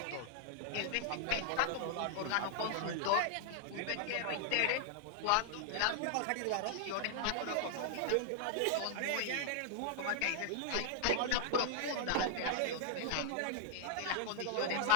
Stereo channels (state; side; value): different; both; correlation 0.00